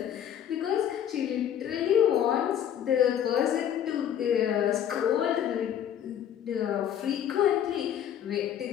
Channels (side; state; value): right; quieter; 9.9 dB